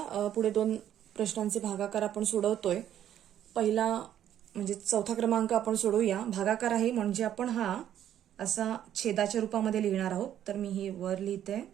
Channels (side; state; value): left; quieter; 10.8 dB